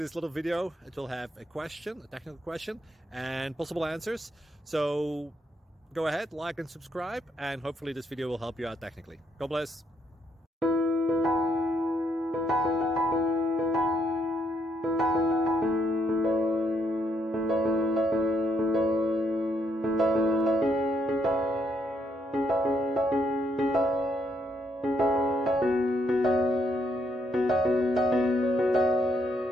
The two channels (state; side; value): normal; both; correlation 0.74